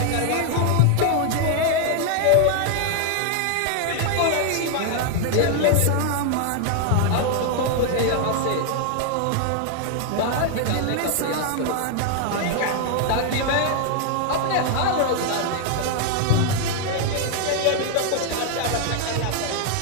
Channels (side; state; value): both; different; correlation 0.00